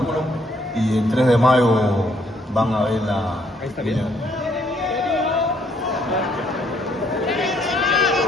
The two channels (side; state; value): both; normal; correlation 0.68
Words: y el 3 de mayo van a ver la pelea.